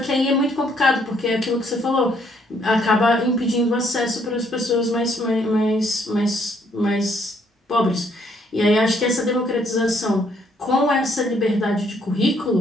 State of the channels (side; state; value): both; normal; correlation 0.68